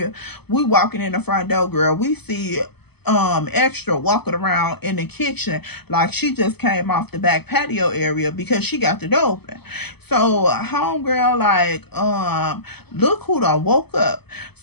We walking in the front door, girl. We see Extra walking around in the kitchen like she just came off the back patio area because she got the door open. So homegirl like, look who done woke up.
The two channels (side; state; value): right; late; 0.97 ms